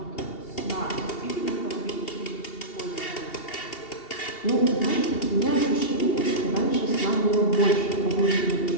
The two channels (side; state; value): right; late; 2.7 ms